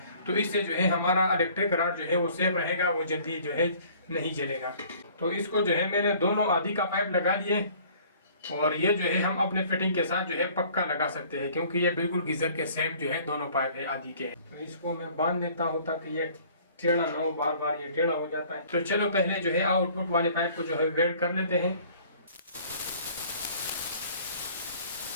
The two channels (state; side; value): inverted; both; correlation -0.53